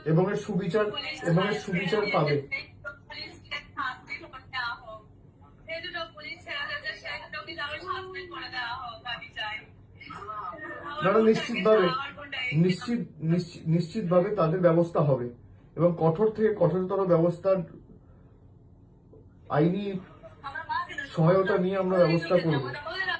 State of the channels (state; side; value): identical; both; correlation 1.00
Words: এবং এর সুবিচার পাবে। নিশ্চিতভাবে তাদের ব্যবস্থা হবে, এবং কঠোর থেকে কঠোরতর ব্যবস্থার আইনি সহায়তা নিয়ে আমরা ব্যবস্থা করব।